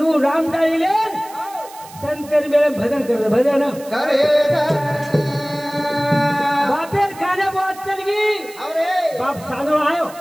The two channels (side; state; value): right; noise; hiss, 20 dB below the sound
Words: राम टाळीले संतर मेळे भजन करत भजन बापेर काने बात चलगी बाप सादो आयो